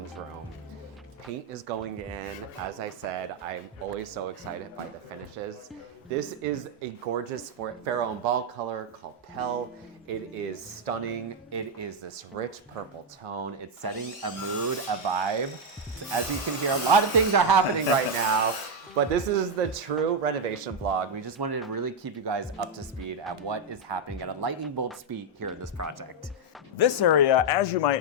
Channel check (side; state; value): both; normal; correlation 0.02